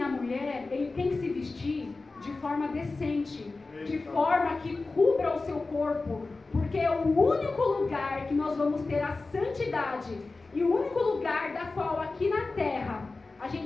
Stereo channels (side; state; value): right; quieter; 3.6 dB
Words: a mulher, ele tem que se vestir de forma decente, de forma que cubra o seu corpo, porque é o único lugar que nós vamos ter a santidade e o único lugar da qual aqui na terra a